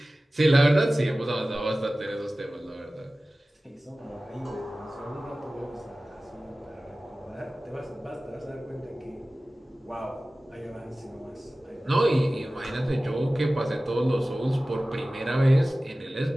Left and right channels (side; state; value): both; normal; correlation 0.97